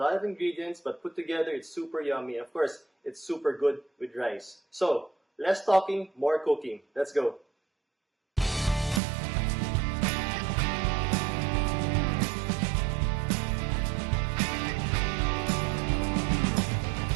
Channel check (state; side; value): drops out; left; at 9.0 s